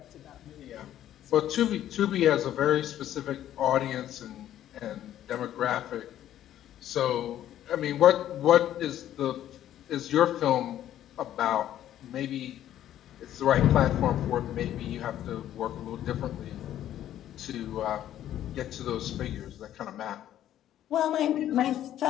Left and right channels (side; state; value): right; quieter; 11.8 dB